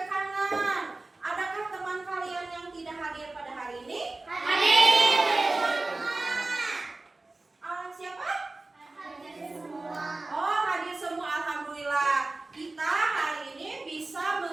kanan. Adakah teman kalian yang tidak hadir pada hari ini? Hadir. Siapa? Oh, hadir semua. Alhamdulillah. Kita hari ini bisa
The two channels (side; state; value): left; quieter; 3.2 dB